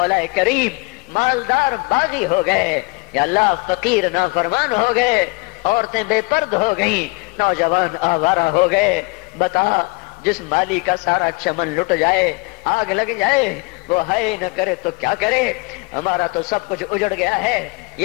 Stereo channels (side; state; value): right; quieter; 27.2 dB